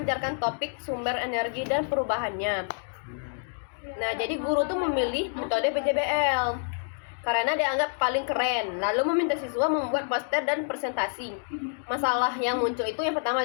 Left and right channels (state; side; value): silent; right; digital silence